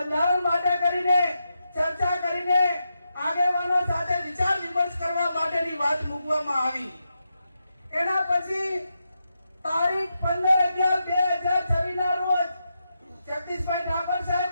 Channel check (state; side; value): inverted; both; correlation -0.86